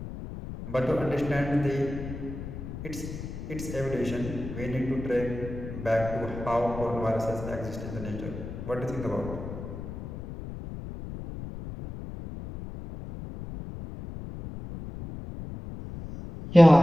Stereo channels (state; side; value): noise; left; rumble, 9 dB below the sound